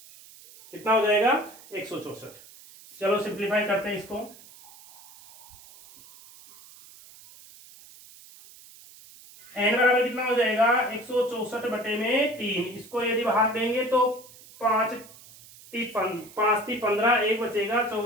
कितना हो जाएगा 164। चलो सिंप्लीफाई करते हैं इसको n बराबर कितना हो जाएगा 164/3। इसको यदि भाग देंगे तो 5 × 15, 1 बचेगा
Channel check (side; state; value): right; noise; hiss, 21 dB below the sound